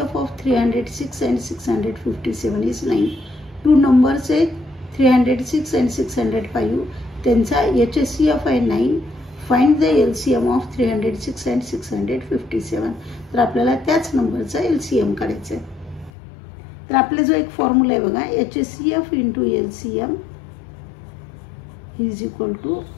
of 306 and 657 is 9. Two numbers आहेत 306 and 605. त्यांचा HCF आहे 9. Find the LCM of 306 and 657. तर आपल्याला त्याच नंबरचा LCM काढायचा आहे. तर आपले जो एक फॉर्म्युला आहे बघा, HCF into LCM is equal to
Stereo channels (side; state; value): right; drops out; at 16.1 s